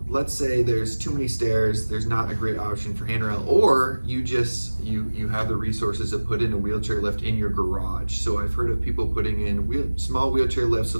let's say there's too many stairs, there's not a great option for handrail, or you have the resources to put in a wheelchair lift in your garage. So I've heard of people putting in small wheelchair lifts so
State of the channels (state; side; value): inverted; both; correlation -1.00